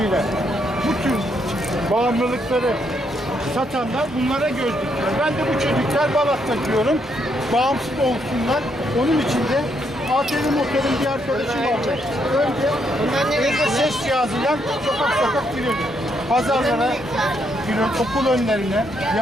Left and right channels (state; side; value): normal; both; correlation 0.75